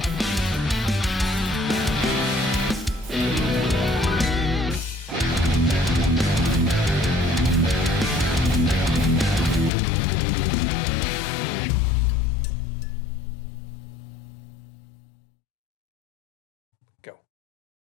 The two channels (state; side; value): drops out; right; at 9.7 s